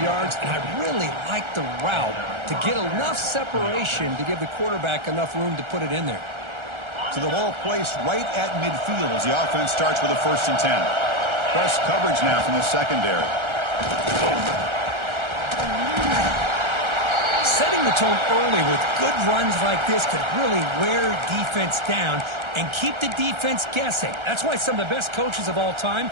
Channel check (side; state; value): left; late; 1.3 ms